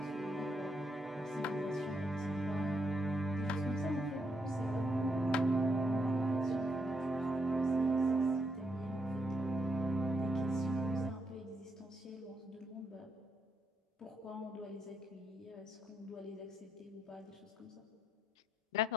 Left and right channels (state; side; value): normal; both; correlation 0.78